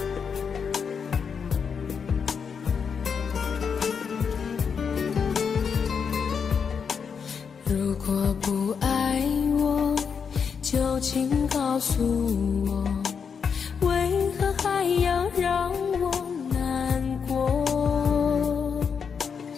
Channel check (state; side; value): quieter; right; 6.4 dB